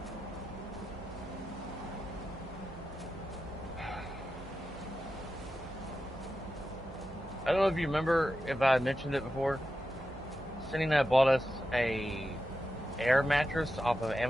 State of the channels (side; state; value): right; noise; hum, 17 dB below the sound